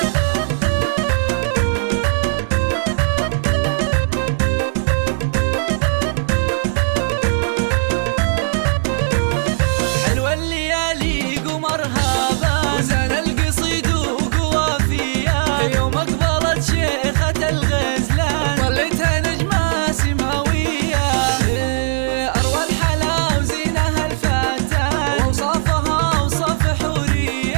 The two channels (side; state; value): left; silent; digital silence